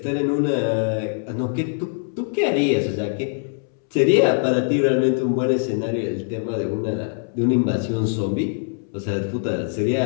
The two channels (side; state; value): right; silent; 64 dB below the other